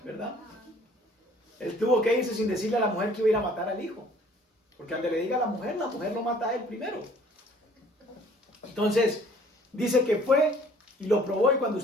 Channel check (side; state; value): both; normal; correlation 0.55